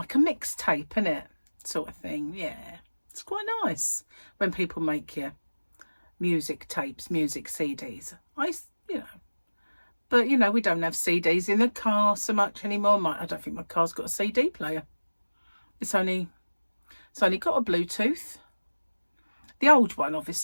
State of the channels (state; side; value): inverted; both; correlation -1.00